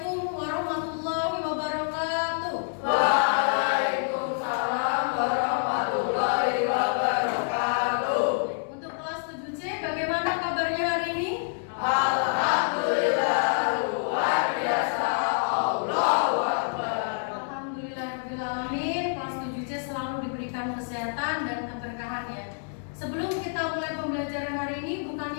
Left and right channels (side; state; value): right; silent; 60 dB below the other